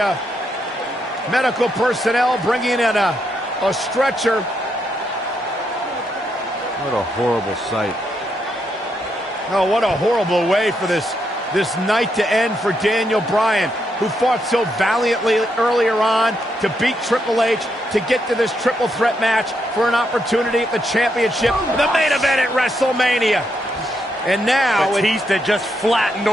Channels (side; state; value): both; normal; correlation 0.79